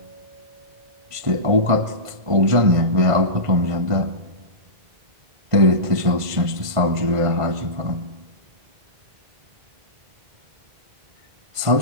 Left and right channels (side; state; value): left; late; 1.5 ms